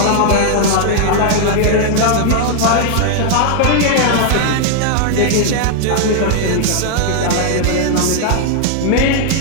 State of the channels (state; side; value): different; both; correlation 0.00